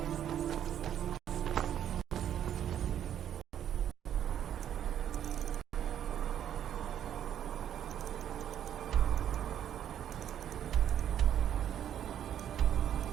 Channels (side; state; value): left; quieter; 10.1 dB